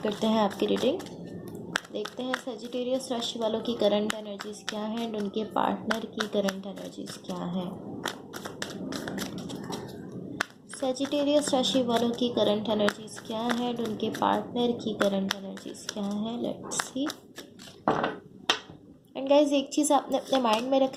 करते हैं आपकी रीडिंग। देखते हैं सजिटेरियस राशि वालों की करंट एनर्जीज क्या है एंड उनके पार्टनर की करंट एनर्जीज क्या है। सजिटेरियस राशि वालों की करंट एनर्जीज क्या है एंड उनके पार्टनर की करंट एनर्जीज क्या है। Let's see. एंड गाइज एक चीज़ आपने अपने माइंड में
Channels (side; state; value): both; identical; correlation 1.00